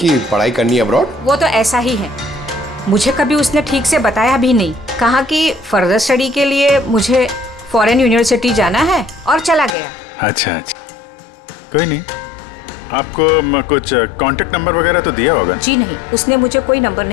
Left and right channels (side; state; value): right; drops out; at 9.8 s